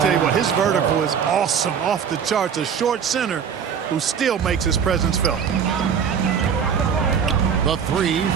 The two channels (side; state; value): left; quieter; 7.4 dB